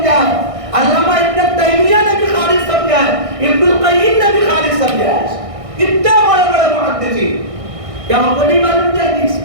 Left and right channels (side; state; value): left; late; 1.6 ms